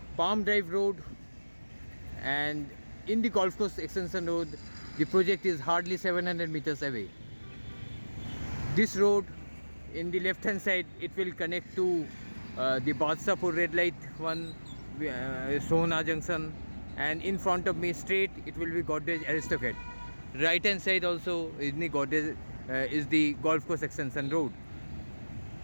Palm Drive Road, and in the Golf Course Extension Road, the project is hardly 700 meters away. This road, in the left hand side, it will connect to the Badshapur red light one, Sohna Junction, and in front of me straight it will be Godrej Aristocrat. Right hand side also is the Godrej is the Golf Course Extension Road.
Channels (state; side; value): inverted; both; correlation -1.00